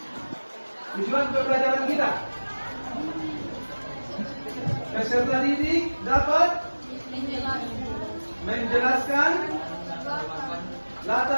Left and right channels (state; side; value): inverted; both; correlation -1.00